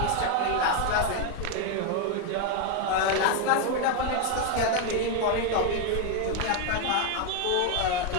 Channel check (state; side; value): different; both; correlation 0.01